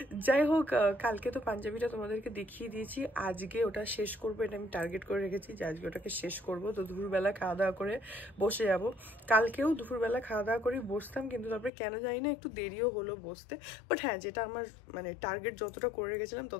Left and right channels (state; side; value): drops out; right; at 11.7 s